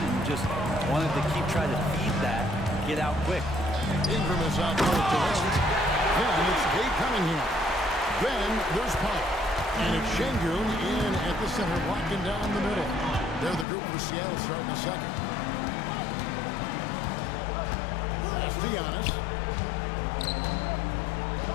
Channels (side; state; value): right; drops out; at 13.7 s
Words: just wanted to keep trying to feed that, get out quick. Ingram is out there to end. Then it's Kate Cunningham. Then there's Pop. And it's Şengün in at the center, walking down the middle. They're the group for Seattle starting the second. That's to Giannis.